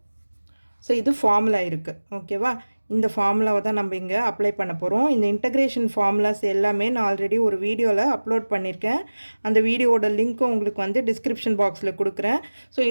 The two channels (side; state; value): both; inverted; correlation -1.00